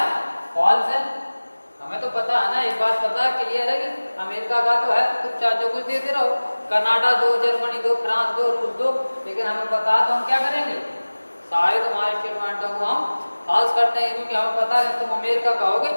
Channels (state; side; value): inverted; both; correlation -1.00